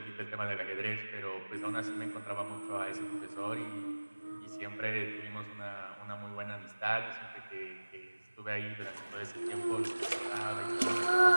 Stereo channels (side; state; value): both; inverted; correlation -1.00